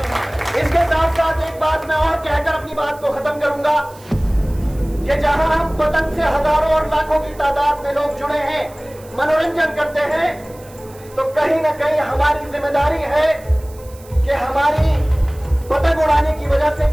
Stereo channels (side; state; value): right; noise; hiss, 24 dB below the sound